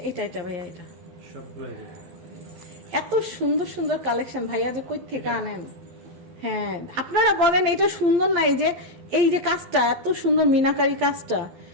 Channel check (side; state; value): left; late; 11 ms